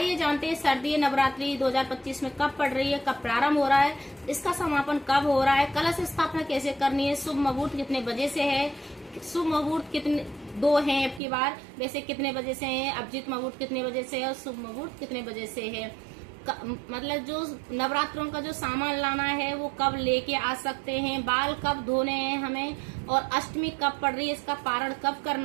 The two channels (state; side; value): drops out; left; at 11.2 s